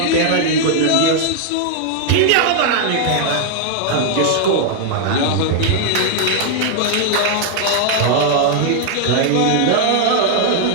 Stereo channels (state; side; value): different; both; correlation 0.00